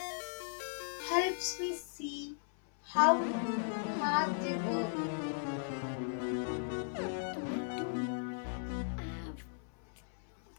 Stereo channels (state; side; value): silent; right; 53 dB below the other